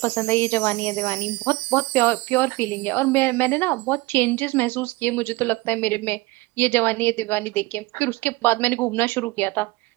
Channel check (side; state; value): left; quieter; 21.8 dB